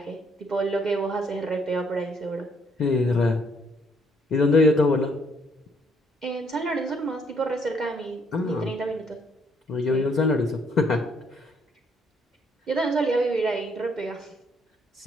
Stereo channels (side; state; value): both; normal; correlation 0.68